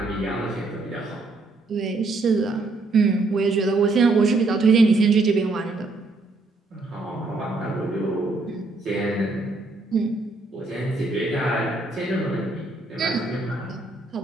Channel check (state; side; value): quieter; left; 3.3 dB